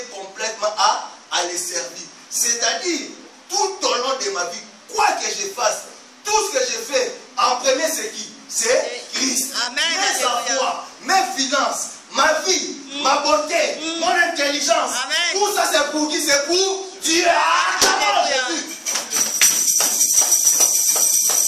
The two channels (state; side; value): identical; both; correlation 1.00